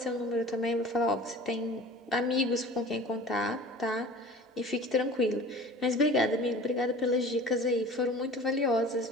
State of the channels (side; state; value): both; normal; correlation 0.41